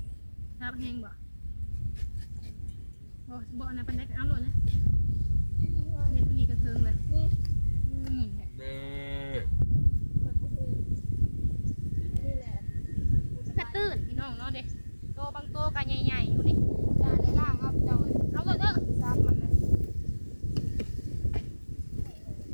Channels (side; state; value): both; inverted; correlation -1.00